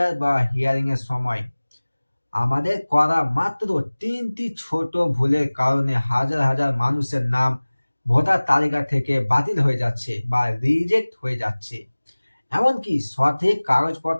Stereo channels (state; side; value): inverted; both; correlation -1.00